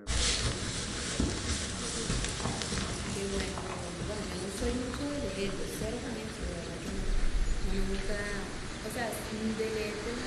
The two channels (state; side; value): identical; both; correlation 1.00